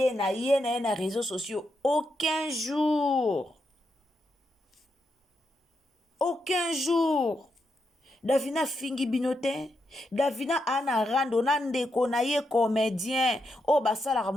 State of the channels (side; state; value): both; normal; correlation 0.83